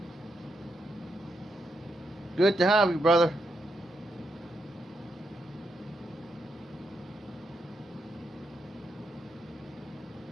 Good to have you, brother.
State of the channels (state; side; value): normal; both; correlation 0.82